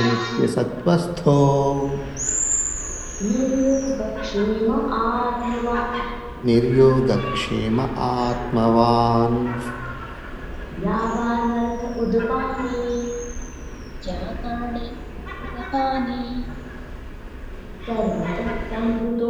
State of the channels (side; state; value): both; identical; correlation 1.00